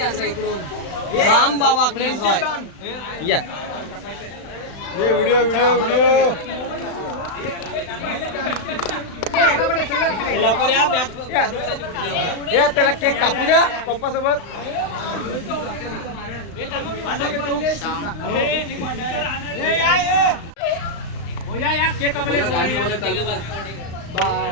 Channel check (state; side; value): late; right; 36 ms